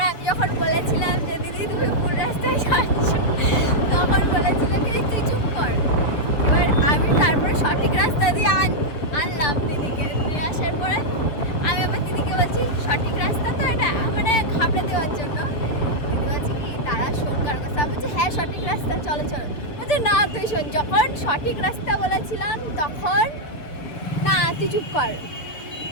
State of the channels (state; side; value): late; right; 7.1 ms